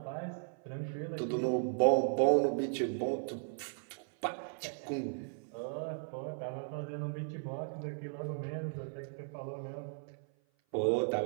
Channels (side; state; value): left; silent; 54 dB below the other